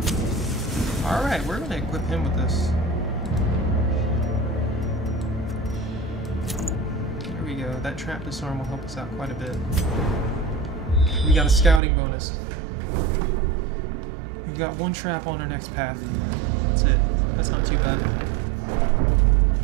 Alright, we're gonna equip him with this. There we go. That trap disarm will help us out quite a bit. We got a scouting bonus. We've got one trap on our next path. That's it. That's not too bad.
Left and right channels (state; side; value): drops out; left; at 11.8 s